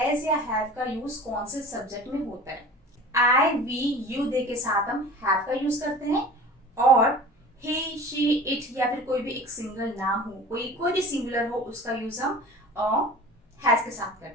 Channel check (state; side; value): normal; both; correlation 0.40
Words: या हैव का यूज कौन से सब्जेक्ट में होता है। आई, वी, यू दे के साथ हम हैव का यूज करते हैं, और ही, शी, इट या फिर कोई भी एक सिंगल नाम हो, कोई भी सिंगुलर हो, उसका यूज हम हैज के साथ